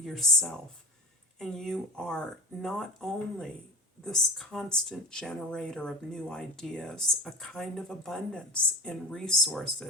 And you are not only this constant generator of new ideas, a kind of abundance in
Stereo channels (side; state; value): both; normal; correlation 0.34